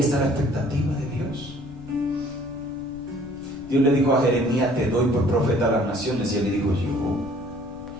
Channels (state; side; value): noise; left; rumble, 20 dB below the sound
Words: la expectativa de Dios. Dios le dijo a Jeremías, te doy por profeta a las naciones, y él le dijo, yo,